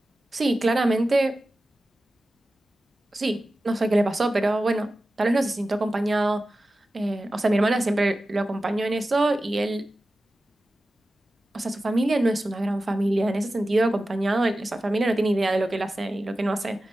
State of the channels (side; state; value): both; normal; correlation 0.94